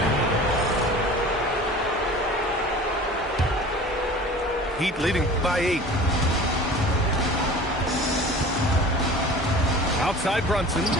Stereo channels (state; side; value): normal; both; correlation 0.41